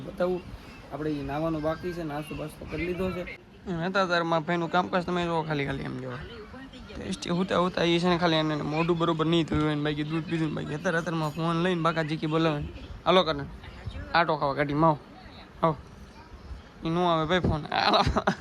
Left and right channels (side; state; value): both; identical; correlation 1.00